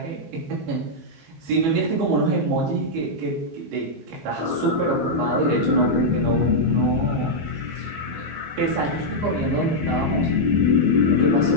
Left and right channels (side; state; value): left; late; 15 ms